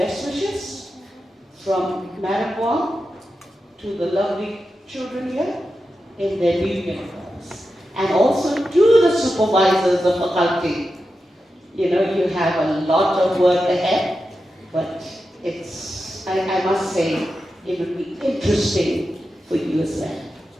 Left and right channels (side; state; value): both; normal; correlation 0.90